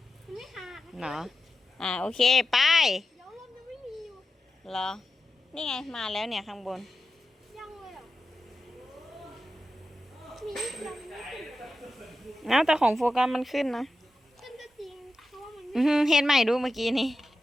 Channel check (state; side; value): normal; both; correlation 0.91